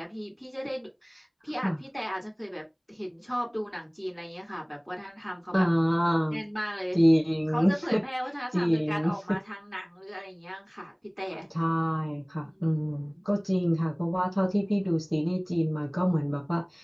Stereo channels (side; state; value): both; identical; correlation 1.00